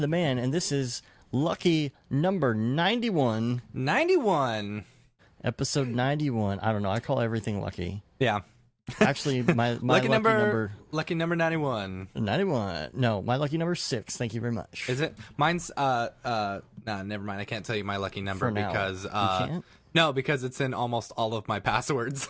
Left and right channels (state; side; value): identical; both; correlation 1.00